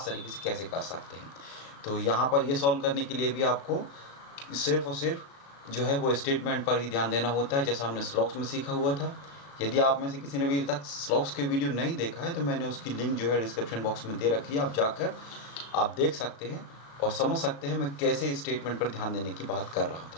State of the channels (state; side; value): late; right; 36 ms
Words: तरीके से कैसे कर सकते हैं। तो यहाँ पर ये सॉल्व करने के लिए भी आपको सिर्फ और सिर्फ जो है वो स्टेटमेंट पर ही ध्यान देना होता है, जैसा हमने स्लॉक्स में सीखा हुआ था। यदि आप में से किसी ने अभी तक स्लॉक्स के वीडियो नहीं देखा है तो मैंने उसकी लिंक जो है डिस्क्रिप्शन बॉक्स में दे रखी है, आप जाकर आप देख सकते हैं और समझ सकते हैं मैं कैसे स्टेटमेंट पर ध्यान देने की बात कर रहा